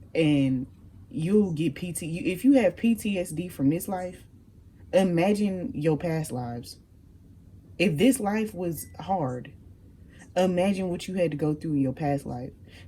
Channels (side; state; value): both; identical; correlation 1.00